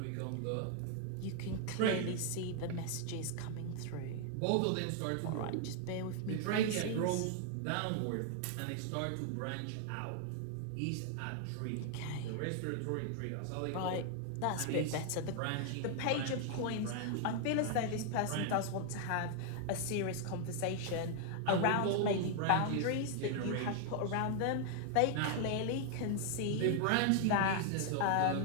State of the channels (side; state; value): both; different; correlation 0.00